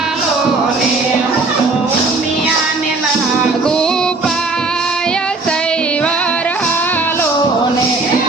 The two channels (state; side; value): quieter; left; 3.5 dB